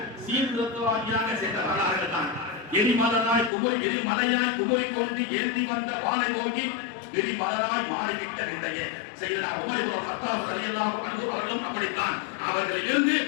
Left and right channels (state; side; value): drops out; right; at 3.5 s